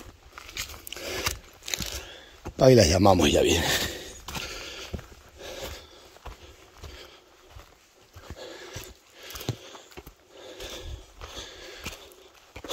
Ahí las llamamos y ya viene.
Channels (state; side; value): identical; both; correlation 1.00